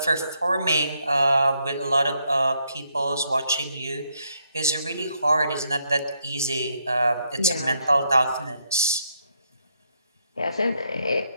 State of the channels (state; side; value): inverted; both; correlation -0.76